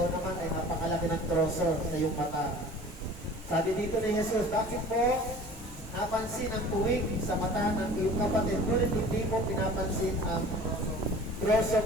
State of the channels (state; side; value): normal; both; correlation 0.44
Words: naman ay napakalaki ng troso sa iyong mata. Sabi dito ni Jesus, bakit mo napansin ang puwing sa mata ng iyong kapatid, ngunit hindi mo pinapansin ang troso